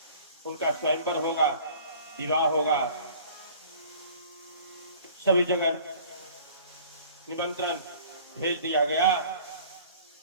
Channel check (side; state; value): both; inverted; correlation -0.49